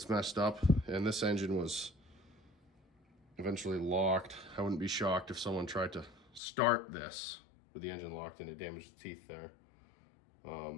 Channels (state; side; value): drops out; right; at 6.4 s